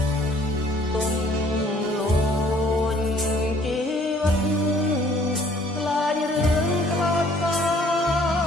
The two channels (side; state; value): both; normal; correlation 0.58